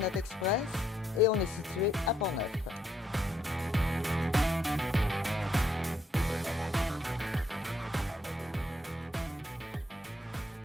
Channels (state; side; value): normal; both; correlation 0.74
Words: Express et on est situé à Portneuf.